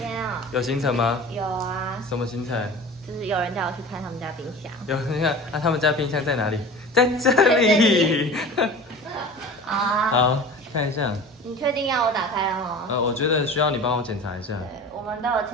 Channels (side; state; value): both; normal; correlation 0.38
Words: 啊，有行程吗？有啊，什么行程？就是有人叫我去看他们家冰箱。有，你看，啊，他们家冰箱在哪里？在这里。好啊，好，看一下。你确定要我打开了吗？我觉得需要你帮我检查一下。对，我们都有